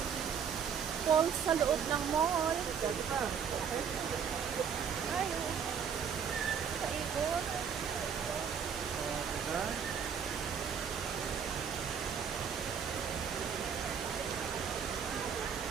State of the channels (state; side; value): quieter; left; 7.3 dB